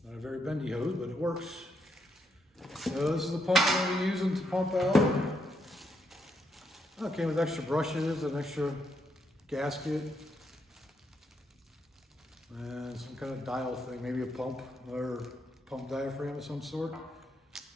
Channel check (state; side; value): normal; both; correlation 0.78